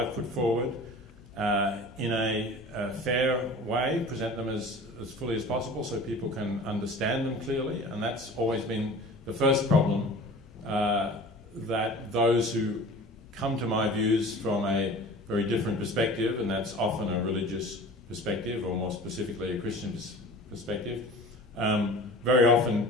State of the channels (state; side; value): normal; both; correlation 0.41